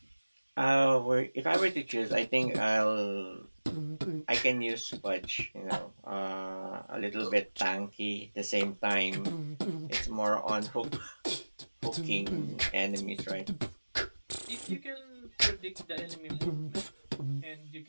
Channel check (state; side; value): inverted; both; correlation -1.00